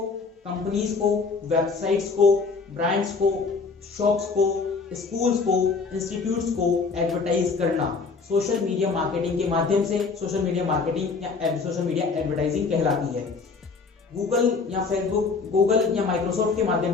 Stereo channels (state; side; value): quieter; right; 4.6 dB